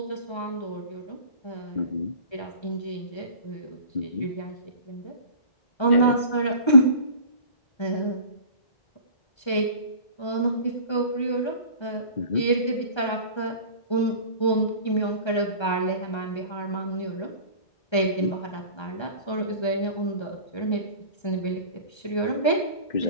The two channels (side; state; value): right; late; 1.3 ms